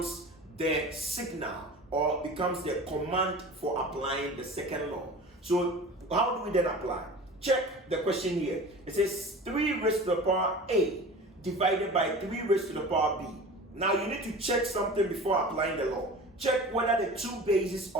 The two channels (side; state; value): both; normal; correlation 0.37